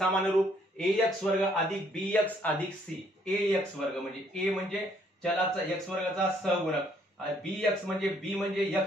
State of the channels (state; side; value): normal; both; correlation 0.66